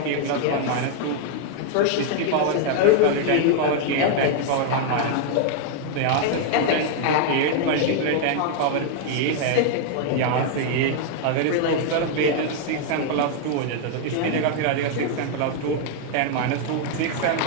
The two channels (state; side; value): different; both; correlation 0.00